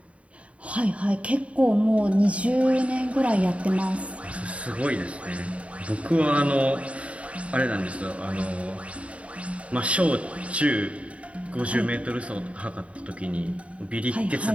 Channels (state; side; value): late; left; 0.064 ms